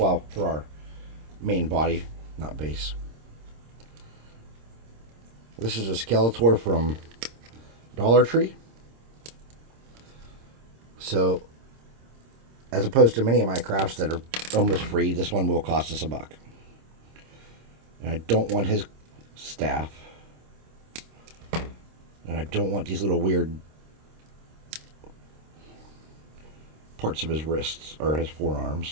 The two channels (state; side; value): late; left; 26 ms